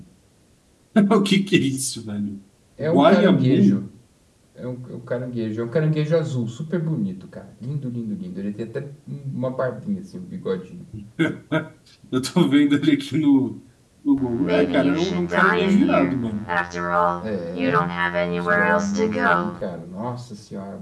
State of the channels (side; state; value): both; identical; correlation 1.00